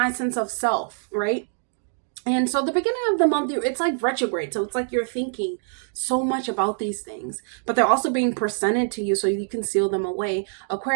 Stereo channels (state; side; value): silent; left; digital silence